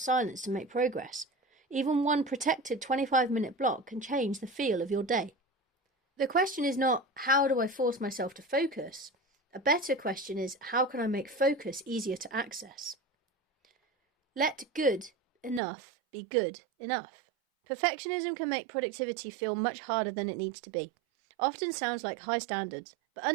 to make progress. Even one protected 25-minute block can change the feel of your day. The question is not, how do I force myself to focus? A better question is, how can I make focus easier to access? Let good enough be good enough. Perfectionism can make productivity feel much harder than it needs to be. Often sounds like high standards, but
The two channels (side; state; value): left; drops out; at 15.6 s